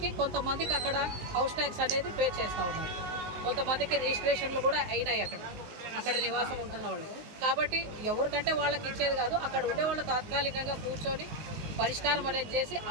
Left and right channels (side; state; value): left; late; 19 ms